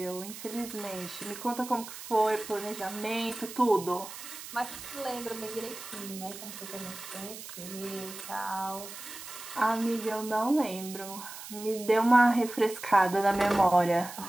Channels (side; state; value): right; noise; hiss, 12 dB below the sound